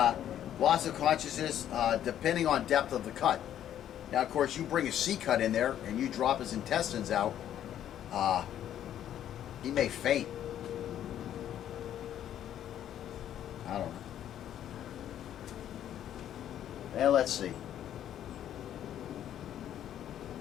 loss of consciousness depending on depth of the cut. Now, of course, you bring a C cut in there and you drop his intestines out, he may faint. I don't know. And let's see.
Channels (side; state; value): right; quieter; 10.8 dB